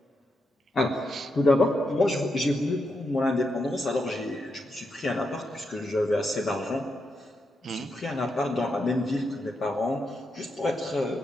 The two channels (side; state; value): both; normal; correlation 0.84